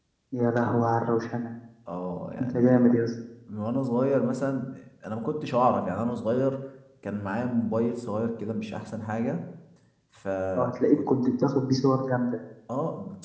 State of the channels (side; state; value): both; identical; correlation 1.00